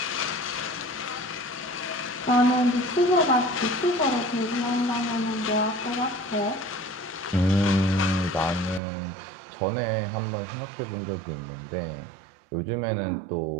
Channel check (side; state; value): left; drops out; at 8.8 s